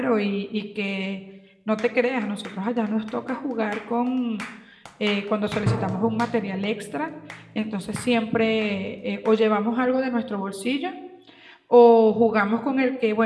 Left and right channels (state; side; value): identical; both; correlation 1.00